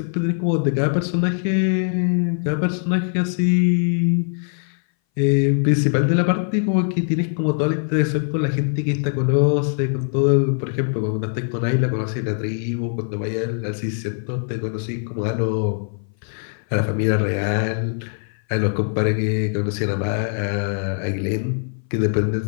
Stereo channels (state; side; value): silent; right; 60 dB below the other